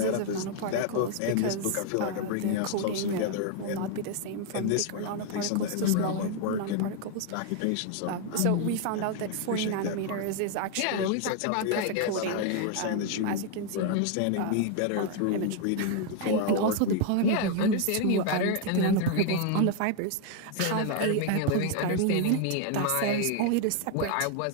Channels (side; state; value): both; different; correlation 0.00